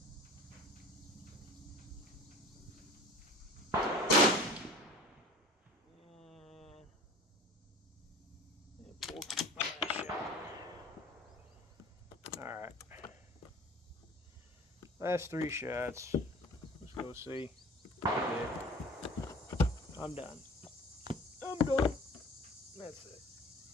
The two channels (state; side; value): normal; both; correlation 0.42